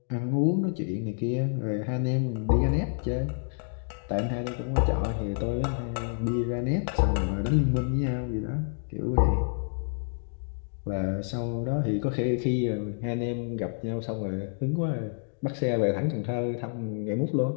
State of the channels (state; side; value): silent; right; digital silence